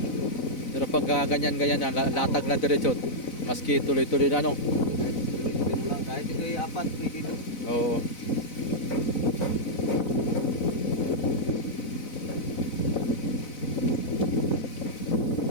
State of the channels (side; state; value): right; late; 4.0 ms